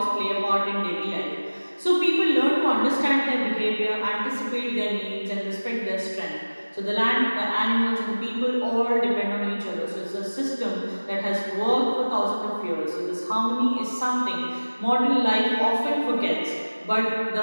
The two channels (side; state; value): both; inverted; correlation -1.00